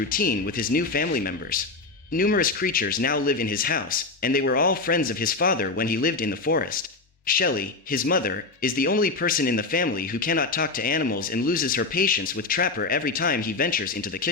with his new family members. Numerous creatures now live in his house, and they were all friends of his father when he lived in the forest. Shelley, his mother, is the only person in the family who cannot talk to animals and loses her patience with Trapper every time he ventures into the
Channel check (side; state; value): right; quieter; 3.8 dB